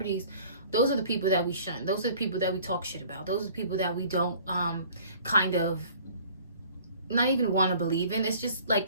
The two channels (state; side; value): inverted; both; correlation -0.51